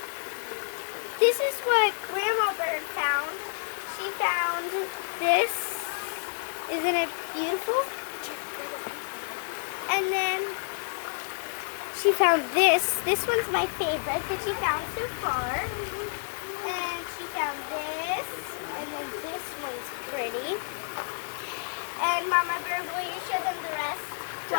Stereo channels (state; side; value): silent; right; digital silence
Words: This is what Grandma Bird found. She found this. Isn't it beautiful? And then she found this. This one's my favorite that she found so far. And she found this. And then this one's pretty. And Mama Bird, will you show them the rest?